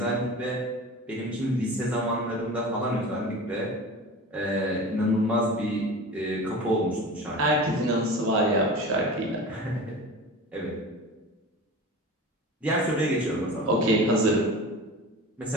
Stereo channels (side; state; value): both; normal; correlation 0.34